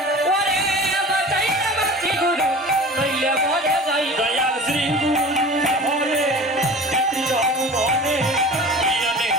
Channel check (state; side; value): normal; both; correlation 0.38